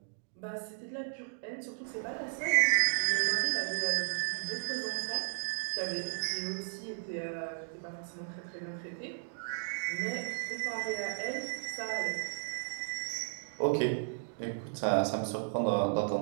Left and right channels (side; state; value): left; silent; digital silence